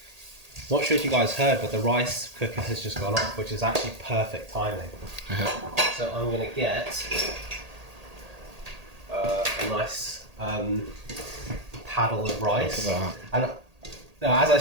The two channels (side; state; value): left; late; 1.8 ms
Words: Not sure if you guys heard, but the rice cooker has just gone off, which is actually perfect timing. So I'm going to get a nice paddle of rice. Look at And now, as I